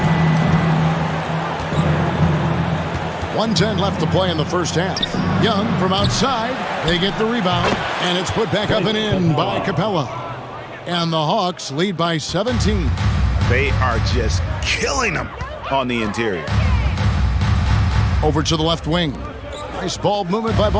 1:10 left to play in the first half. Young from outside. They get the rebound, and it's put back up and in by Capella. And the Hawks lead by 17. They are just killing them on the interior. Over to the left wing. Nice ball movement by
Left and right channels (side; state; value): both; identical; correlation 1.00